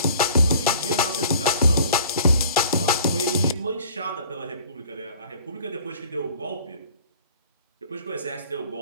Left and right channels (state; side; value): inverted; both; correlation -0.51